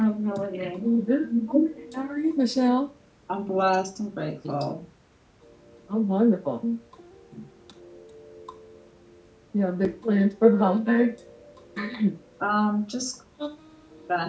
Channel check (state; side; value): identical; both; correlation 1.00